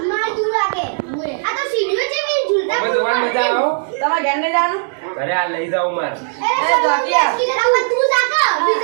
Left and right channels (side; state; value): left; silent; digital silence